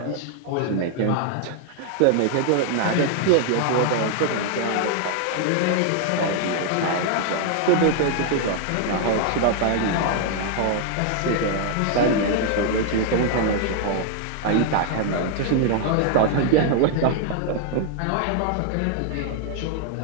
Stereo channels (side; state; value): both; different; correlation 0.00